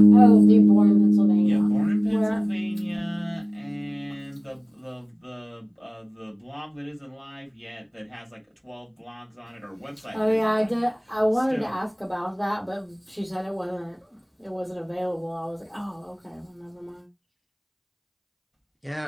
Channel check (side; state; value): both; identical; correlation 1.00